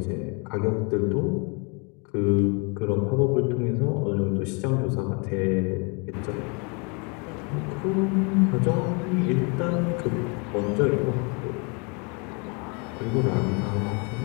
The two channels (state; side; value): quieter; right; 33.2 dB